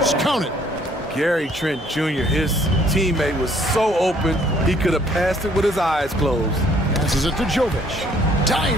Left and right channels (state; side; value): normal; both; correlation 0.62